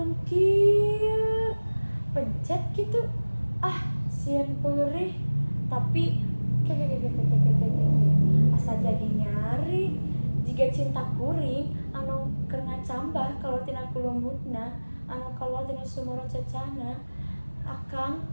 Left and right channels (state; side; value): inverted; both; correlation -1.00